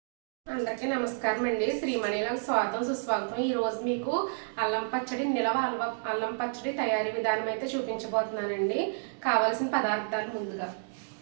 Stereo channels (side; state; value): left; silent; digital silence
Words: అందరికీ నమస్కారం అండి. శ్రీమణిలకు స్వాగతం సుస్వాగతం. ఈరోజు మీకు అల్లం పచ్చడి అల్లం పచ్చడి తయారీ విధానం అయితే చూపించబోతున్నానండి. కావాల్సిన పదార్థాలు ముందుగా